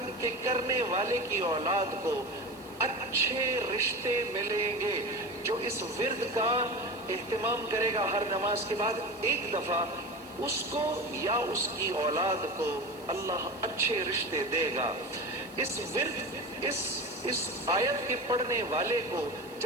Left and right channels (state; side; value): noise; right; hiss, 24 dB below the sound